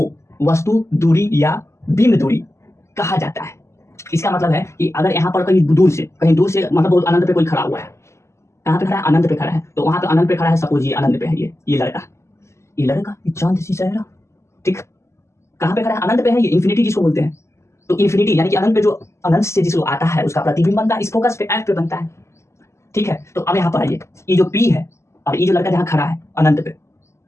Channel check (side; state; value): right; late; 0.13 ms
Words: वस्तु दूरी या बिंब दूरी कहा जाता है। इसका मतलब है कि अगर यहाँ पर कहीं दूर से मतलब बहुत अनंत पे कोई खड़ा हुआ है, कहाँ पे खड़ा है, अनंत पे खड़ा है, तो वहां पे अनंत पे खड़ा है, सपोज ये अनंत पे है, ये लड़का, ये चांद सी चेहरा, ठीक, कहाँ पे खड़ा है, अनंत पे है, ये इन्फिनिटी जिसको बोलते हैं। तो इन्फिनिटी यानी कि अनंत पे जो अनंत से जिसको आता है उसका प्रतिबिंब बनता है, इस फोकस पे, एफ पे बनता है, ठीक है। तो अब यहाँ पर आइए, ये जो पी है और ये जो लड़का जहाँ खड़ा है अनंत पे,